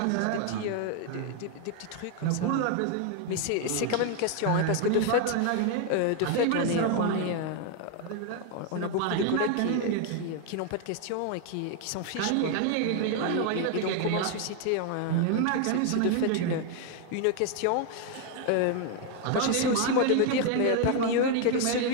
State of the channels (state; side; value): different; both; correlation 0.00